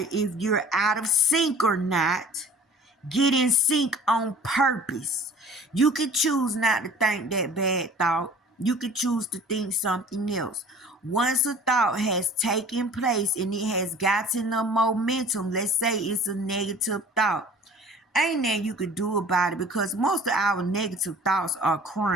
if you're out of sync or not. Get in sync on purpose. You could choose not to think that bad thought. You could choose to think something else. Once a thought has taken place and it has gotten a momentum, let's say it's a negative thought, ain't nothing you could do about it, because most of our negative thoughts are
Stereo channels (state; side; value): normal; both; correlation 0.47